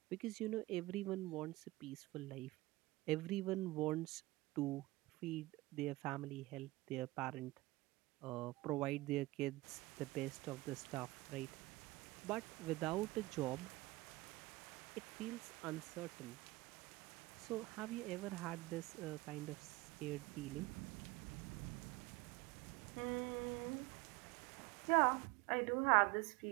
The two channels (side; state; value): left; quieter; 20.8 dB